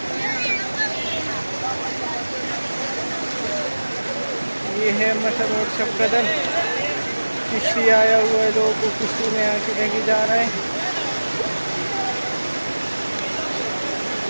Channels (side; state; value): both; inverted; correlation -1.00